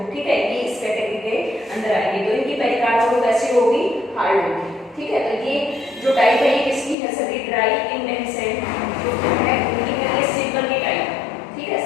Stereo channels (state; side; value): drops out; right; at 7.0 s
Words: ठीक है, ये इस कैटेगरी के अंदर आएगी। तो इनकी पेरिकार्प वो कैसी होगी, हार्ड होगी। ठीक है, तो ये जो टाइप है ये किसकी है, सभी ड्राई इंडेहिसेंट जो है उनकी है, ये सिंपल की टाइप है। ठीक है,